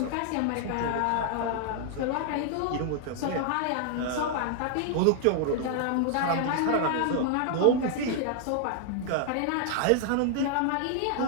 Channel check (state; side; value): different; both; correlation 0.00